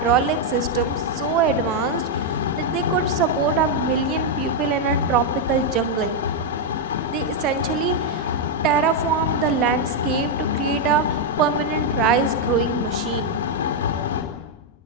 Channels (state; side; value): normal; both; correlation -0.01